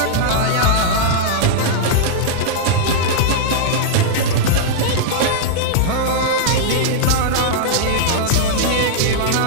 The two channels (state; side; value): different; both; correlation -0.02